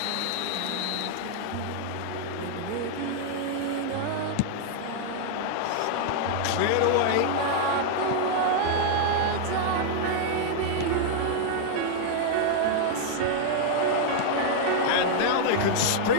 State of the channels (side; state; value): both; different; correlation -0.01